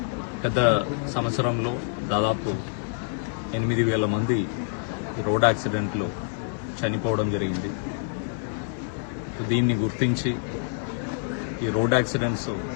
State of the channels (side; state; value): right; silent; digital silence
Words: గత సంవత్సరంలో దాదాపు 8,000 మంది రోడ్ యాక్సిడెంట్లో చనిపోవడం జరిగింది. దీన్ని గుర్తించి ఈ రోడ్ యాక్సిడెంట్స్